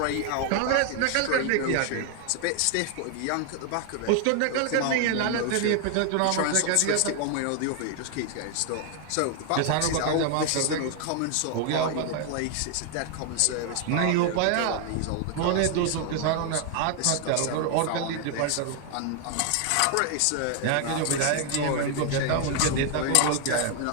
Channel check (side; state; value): both; different; correlation 0.00